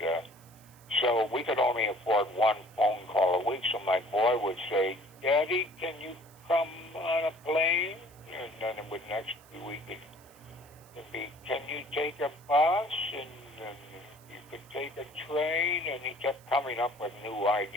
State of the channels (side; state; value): right; noise; hiss, 26 dB below the sound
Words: so we could only afford one phone call a week. So my boy would say, Daddy, can you come on a plane? And then it would next week it'd be, can you take a bus? And you could take a train. And he kept coming up with new